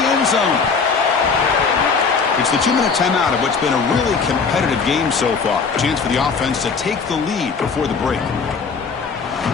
end zone. It's the 2-minute timeout of what's been a really competitive game so far. Chance for the offense to take the lead before the break.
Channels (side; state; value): right; quieter; 5.2 dB